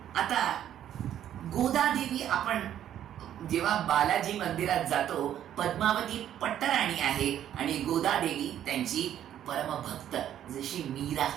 आता गोदादेवी, आपण जेव्हा बालाजी मंदिरात जातो, पद्मावती पट्टराणी आहे आणि गोदादेवी त्यांची परमभक्त, जशी मीरा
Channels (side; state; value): left; quieter; 10.8 dB